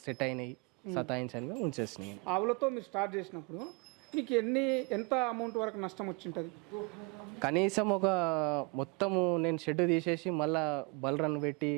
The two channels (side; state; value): left; quieter; 30.7 dB